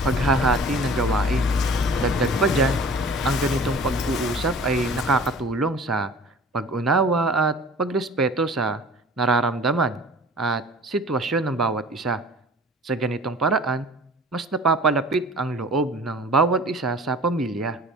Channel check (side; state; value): both; normal; correlation 0.45